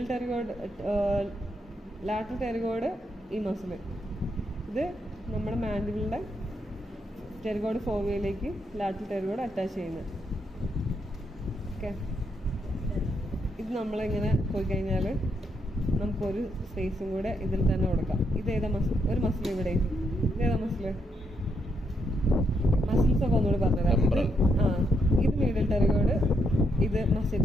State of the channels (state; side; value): normal; both; correlation 0.78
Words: ടെറിഗോയിഡ്, ലാറ്ററൽ ടെറിഗോയിഡ് ഈ മസിൽ. ഇത് നമ്മുടെ മാൻഡിബിളിൻ്റെ ടെറിഗോയിഡ് ഫോവിയയിലേക്ക് ലാറ്ററൽ ടെറിഗോയിഡ് അറ്റാച്ച് ചെയ്യുന്നത്. ഓക്കെ, ഇത് നമ്മളിങ്ങനെ പോയി കഴിഞ്ഞാൽ നമുക്കൊരു സ്പേസും കൂടെ ഇതിൽ തന്നെ കൊടുക്കാം. ഇതേതാ മസിൽ? ഒരു മസിൽ ഇവിടെ. ഇതേതാ മസിൽ? മസിൽസ് ഒക്കെ ഒന്നുകൂടി പറഞ്ഞുതരാം. ഇത് മീഡിയൽ ടെറിഗോയിഡ്, ഇത്